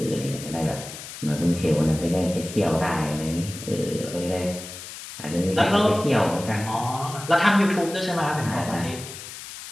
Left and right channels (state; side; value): noise; left; hiss, 12 dB below the sound